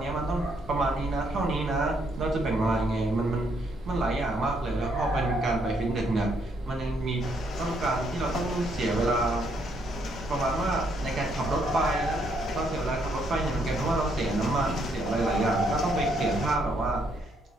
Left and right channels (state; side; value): normal; both; correlation 0.72